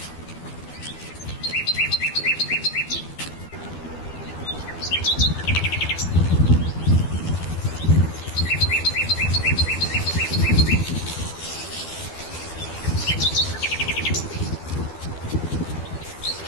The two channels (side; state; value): right; late; 12 ms